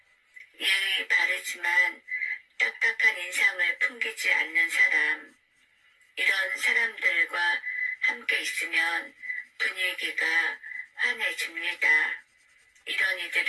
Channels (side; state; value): both; identical; correlation 1.00